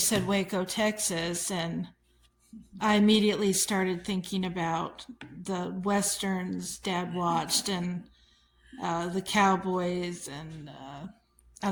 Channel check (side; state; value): both; identical; correlation 1.00